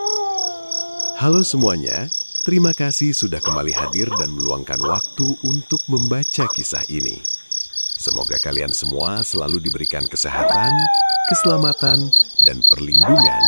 Halo semuanya, terima kasih sudah kembali hadir dan meluangkan waktu untuk membaca kisah ini. Semoga kalian semua selalu diberikan kesehatan, keselamatan, dan perlindungan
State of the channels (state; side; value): inverted; both; correlation -1.00